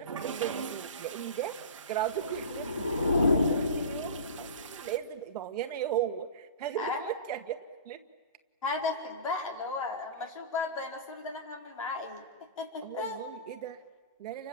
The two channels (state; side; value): inverted; both; correlation -0.32